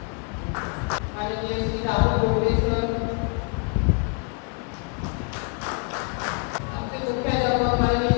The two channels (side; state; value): right; quieter; 37.9 dB